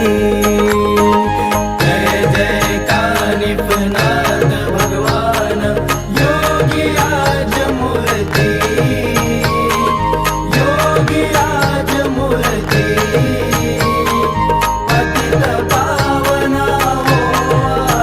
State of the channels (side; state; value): both; identical; correlation 1.00